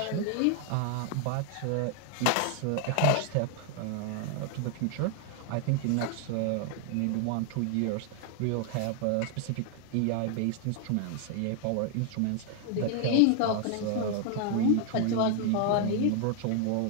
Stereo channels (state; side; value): different; both; correlation 0.00